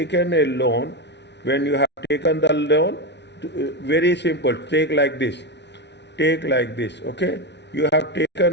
a loan. When you have taken the loan, very simple, take like this, okay? You have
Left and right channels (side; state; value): right; late; 0.50 ms